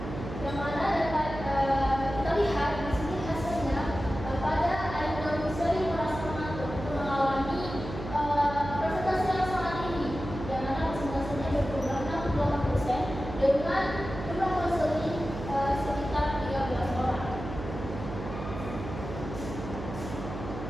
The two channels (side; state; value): right; noise; hum, 8 dB below the sound